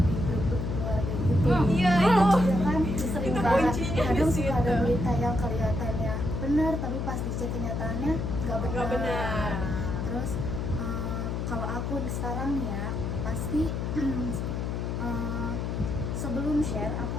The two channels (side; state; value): left; noise; hum, 2 dB below the sound